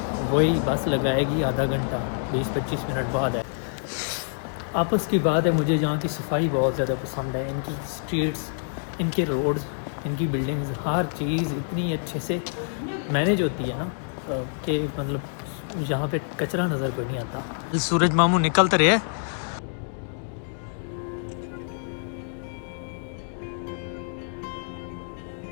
वही बस लगाएगी आधा घंटा 20-25 मिनट बाद है। आपस की बात है, मुझे यहाँ की सफाई बहुत ज़्यादा पसंद है। इनकी स्ट्रीट्स, इनके रोड्स, इनकी बिल्डिंग्स, हर चीज़ इतनी अच्छे से मैनेज होती है ना कि मतलब यहाँ पे कचरा नज़र कोई नहीं आता। सूरज मामू निकलते रहे।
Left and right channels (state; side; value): silent; right; digital silence